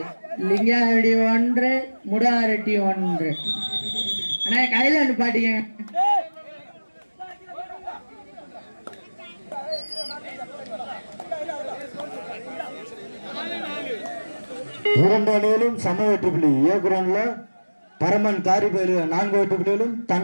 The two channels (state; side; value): inverted; both; correlation -1.00